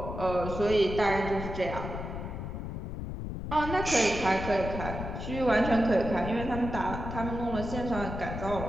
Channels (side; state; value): left; noise; rumble, 6 dB below the sound